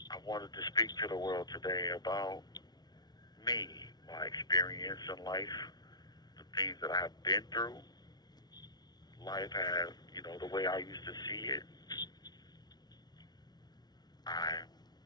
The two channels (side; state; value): right; late; 0.19 ms